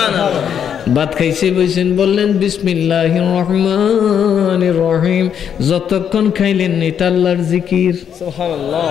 ভাত খাইছে বইছেন, বললেন বিসমিল্লাহির রহমানির রহিম, যতক্ষণ খাইলেন এটা আল্লাহর জিকির। সুবহানাল্লাহ।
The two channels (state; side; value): quieter; right; 8.3 dB